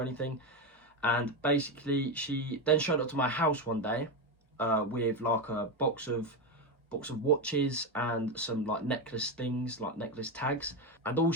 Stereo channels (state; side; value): normal; both; correlation 0.12